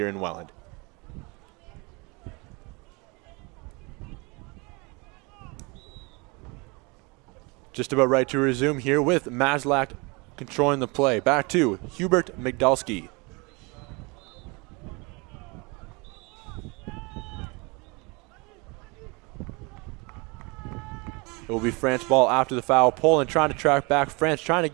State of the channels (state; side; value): quieter; left; 28.4 dB